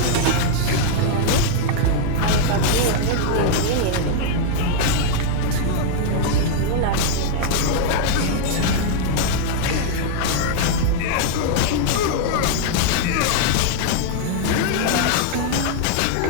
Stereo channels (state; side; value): different; both; correlation -0.01